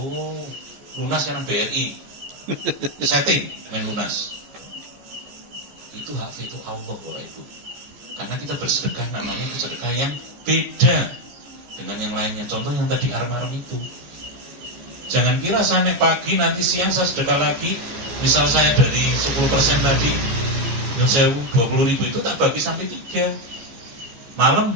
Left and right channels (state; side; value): late; left; 14 ms